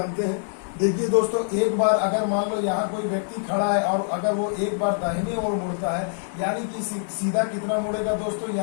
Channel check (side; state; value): right; silent; digital silence